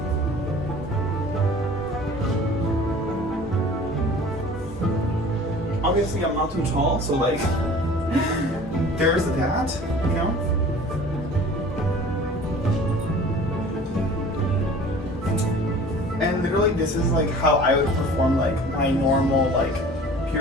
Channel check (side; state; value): both; normal; correlation 0.45